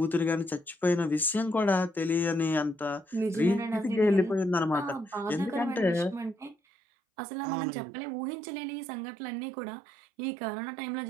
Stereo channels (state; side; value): drops out; left; at 6.6 s